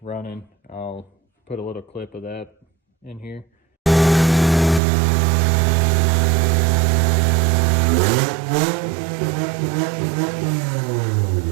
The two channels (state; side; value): drops out; left; at 4.8 s